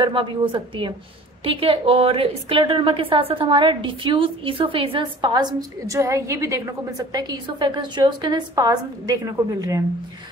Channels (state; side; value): normal; both; correlation 0.46